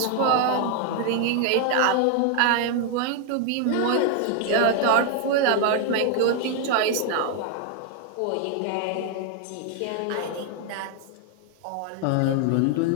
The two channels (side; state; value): both; different; correlation 0.01